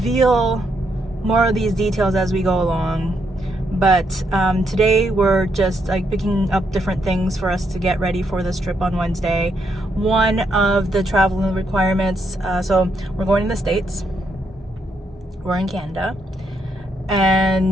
more of these details as we go along. But today we're just like picking up different things for us to get ready for this trip on Wednesday. One of the travel requirements, so we're going to the States. We're in Canada.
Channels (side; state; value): both; normal; correlation 0.77